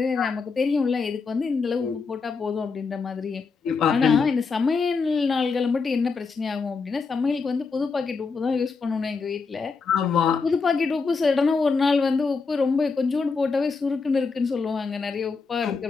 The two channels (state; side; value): quieter; right; 4.8 dB